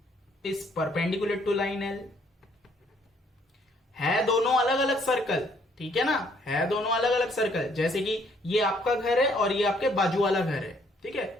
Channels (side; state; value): both; normal; correlation 0.65